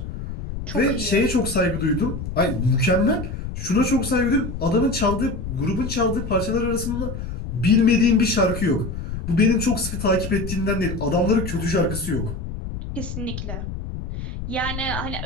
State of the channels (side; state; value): left; noise; rumble, 7 dB below the sound